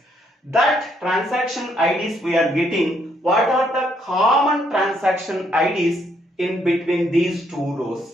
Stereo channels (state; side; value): normal; both; correlation 0.71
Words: That transaction IDs we are getting. What are the common transaction IDs in between these two